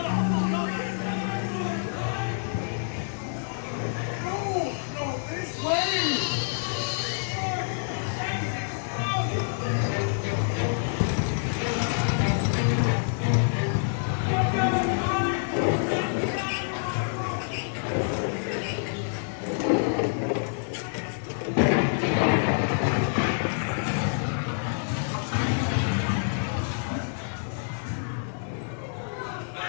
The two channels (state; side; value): silent; right; digital silence